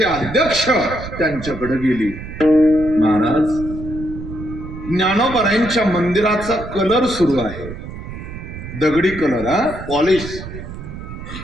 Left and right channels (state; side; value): noise; right; rumble, 11 dB below the sound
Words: अध्यक्ष त्यांच्याकडे गेली. महाराज, ज्ञानोबरांच्या मंदिराचा कलर सुरू आहे, दगडी कलर, पॉलिश,